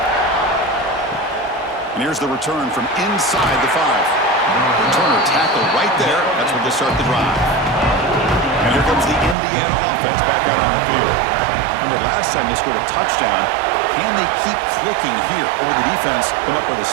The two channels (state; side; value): drops out; left; at 9.3 s